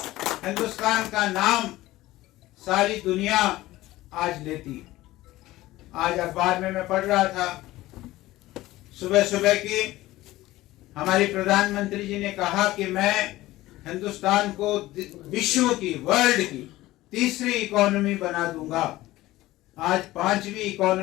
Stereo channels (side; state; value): right; quieter; 17.2 dB